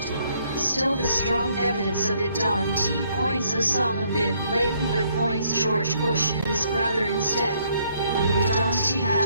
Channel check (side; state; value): both; inverted; correlation -0.68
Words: Still, the strong evidence of it don't point Osama bin Laden but points George Bush and his brother instead. We don't